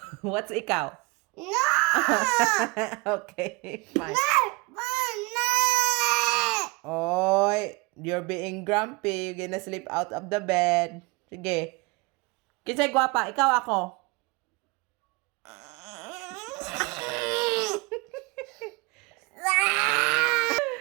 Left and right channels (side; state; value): left; quieter; 26.5 dB